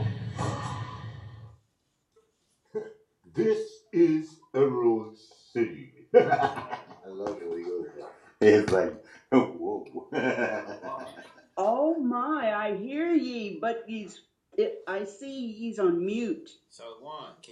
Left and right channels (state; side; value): identical; both; correlation 1.00